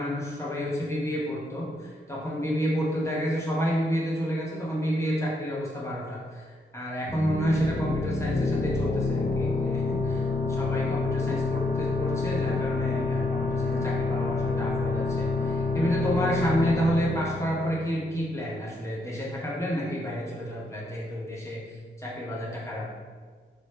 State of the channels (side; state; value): both; normal; correlation 0.76